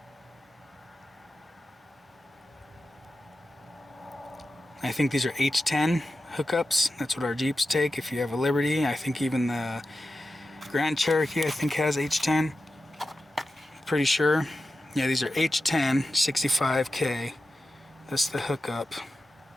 I think these are H10 hookups. That's what our Jeeps take. If you have a Liberty, I think even the Grand Cherokee I think has H10. Pretty sure. Yeah, these are H10 65K. That's the hookup.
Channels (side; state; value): both; normal; correlation 0.92